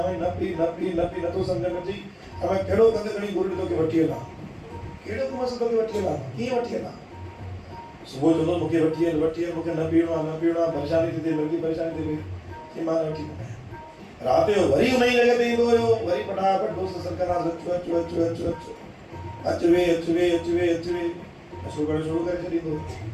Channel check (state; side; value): identical; both; correlation 1.00